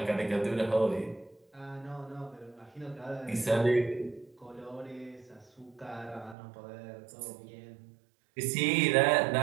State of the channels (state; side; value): drops out; left; at 6.4 s